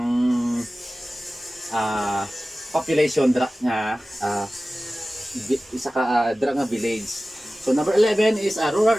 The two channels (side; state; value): both; normal; correlation 0.96